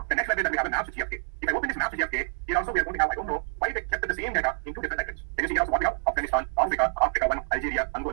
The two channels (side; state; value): left; silent; digital silence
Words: the next library that we have is maps to GFK. If I open this maps to GFK, here also we are going to have, I don't know why they kept the same data in 2 different libraries. Can you see here also what we have? Afghanistan, Africa 1, Algeria,